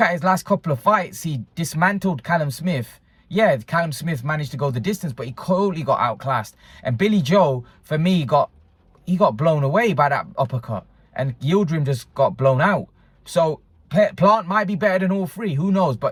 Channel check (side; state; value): both; identical; correlation 1.00